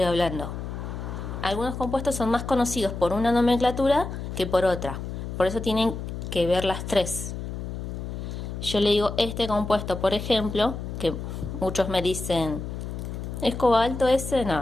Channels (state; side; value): noise; left; hum, 6 dB below the sound